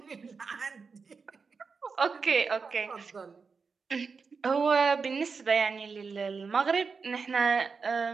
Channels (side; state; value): left; quieter; 5.0 dB